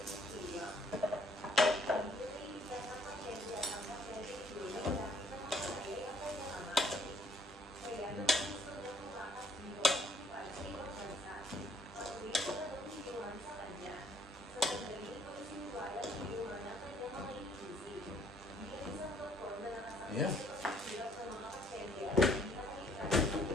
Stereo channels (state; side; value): normal; both; correlation 0.65